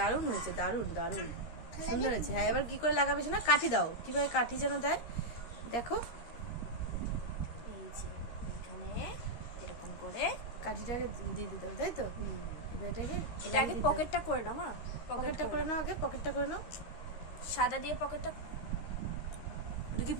হয়েছে, দারুণ দারুণ সুন্দর হয়েছে। হ্যাঁ, এবার কি করে লাগাবে না? কাঠি দাও। কিভাবে কাঠি যেন দেয় দেখো। এই যে এখানে এরকম করে কাঠিটাকে দিয়ে দিতে হবে, তাই তো? এটাকে আগে পকেটটা করে নাও। মা, পকেটটা করে নাও, আগে পকেটটা করে নাও। সাদা দিয়ে পকেটটা। ওটা কি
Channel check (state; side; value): late; right; 13 ms